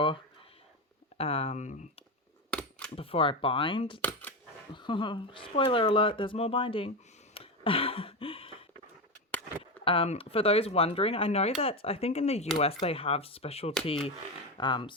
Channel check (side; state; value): both; normal; correlation 0.16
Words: I bind. Spoiler alert, there's more binding. For those wondering, I know that I think in the US they have specialty